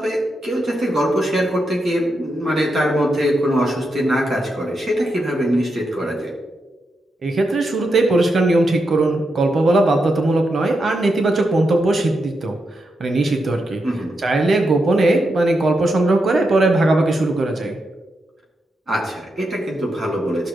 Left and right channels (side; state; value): both; normal; correlation 0.85